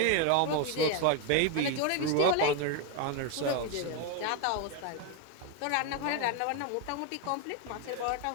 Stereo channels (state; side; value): different; both; correlation 0.01